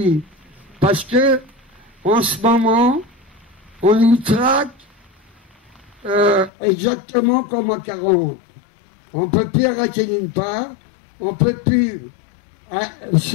parce que en ce moment on nous traque exactement comme en 40. On ne peut plus arrêter d'une part, on ne peut plus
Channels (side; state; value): right; drops out; at 6.5 s